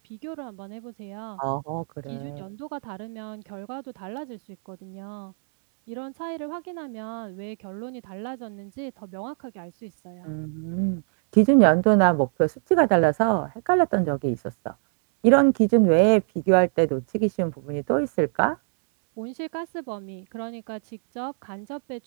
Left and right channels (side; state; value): left; silent; 62 dB below the other